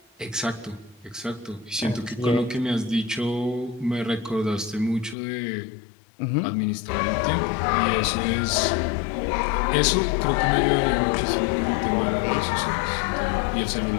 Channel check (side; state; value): right; drops out; at 5.2 s